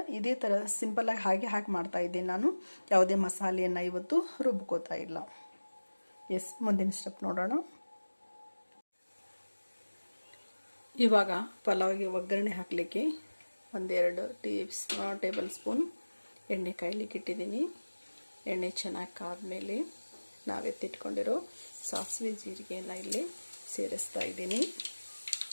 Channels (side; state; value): both; inverted; correlation -1.00